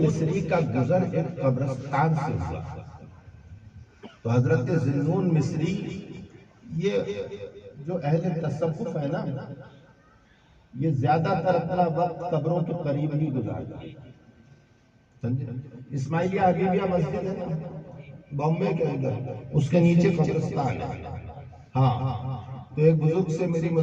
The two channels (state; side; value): identical; both; correlation 1.00